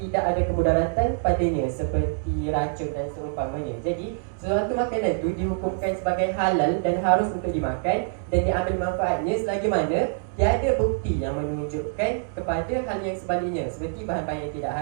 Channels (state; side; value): silent; left; digital silence